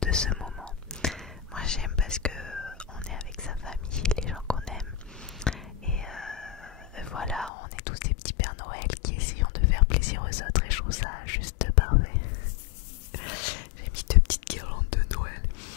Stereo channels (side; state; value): right; drops out; at 7.5 s